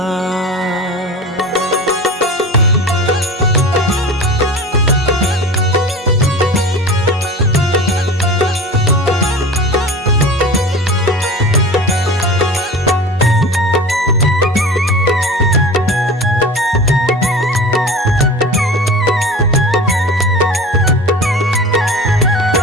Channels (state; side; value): normal; both; correlation 0.35